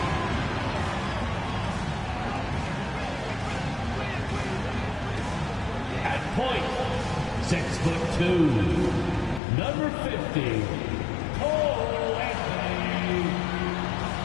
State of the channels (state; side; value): drops out; right; at 9.4 s